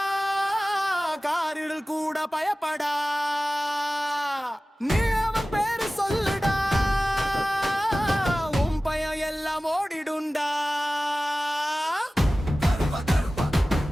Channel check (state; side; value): normal; both; correlation 0.97